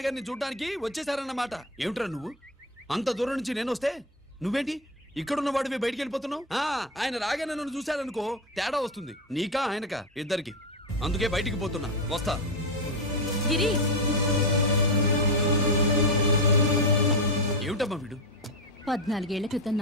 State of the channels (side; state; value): both; normal; correlation 0.13